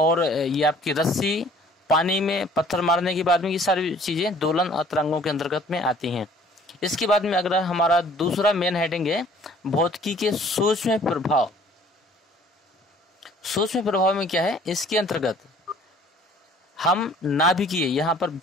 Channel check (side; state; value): both; normal; correlation 0.54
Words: ये आपकी रस्सी, पानी में पत्थर मारने के बाद में, ये सारी चीजें दोलन और तरंगों के अंतर्गत में आती हैं। इसके बाद में अगर हमारा दूसरा मेन हेडिंग है भौतिकी के सूक्ष्म प्रभाव। सूक्ष्म प्रभाव में क्या है, इसके अंतर्गत हम नाभिकीय, यहाँ पर